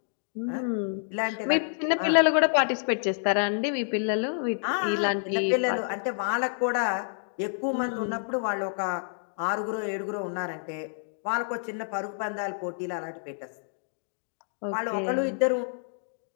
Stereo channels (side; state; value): right; silent; digital silence